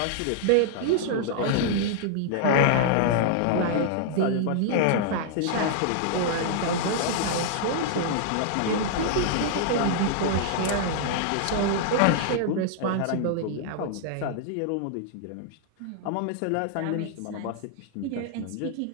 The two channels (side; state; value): both; different; correlation -0.01